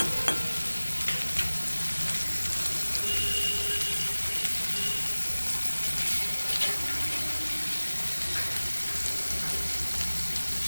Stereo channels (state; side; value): inverted; both; correlation -1.00